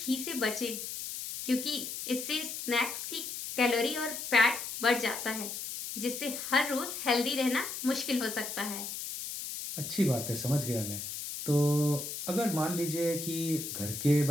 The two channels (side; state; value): left; noise; hiss, 6 dB below the sound